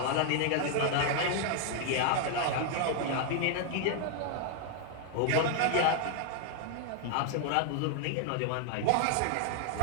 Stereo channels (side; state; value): both; different; correlation 0.00